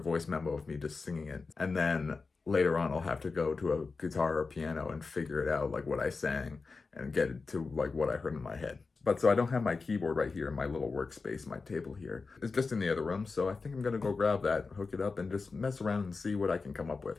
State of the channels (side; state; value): right; quieter; 4.3 dB